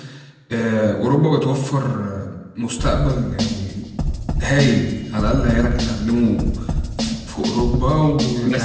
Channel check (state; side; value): identical; both; correlation 1.00